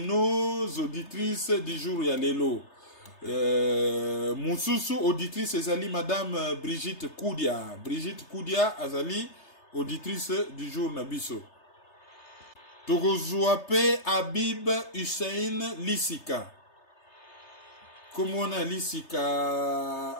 auditrices du jour ya lelo. Moussousou auditrice ezali madame Brigitte Koudia. Brigitte Koudia azali auditrice du jour nabiso. Togozuape Habib Hussein Lissika. Comment on a Lissika?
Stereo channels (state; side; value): late; right; 3.3 ms